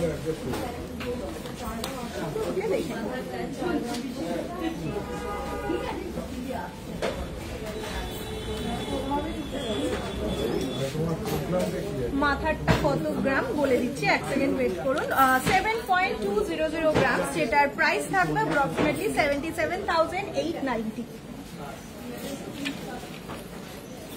মাথারটা কত গ্রাম বলে দিচ্ছি, 1 সেকেন্ড ওয়েট করুন। 7.200 গ্রাম, যেটার প্রাইস থাকবে অ্যাপ্রক্সিমেটলি 77,890।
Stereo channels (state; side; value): identical; both; correlation 1.00